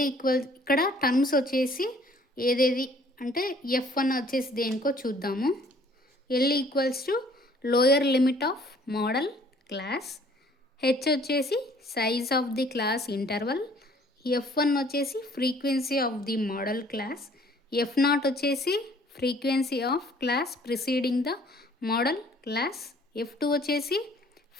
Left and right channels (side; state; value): both; normal; correlation 0.57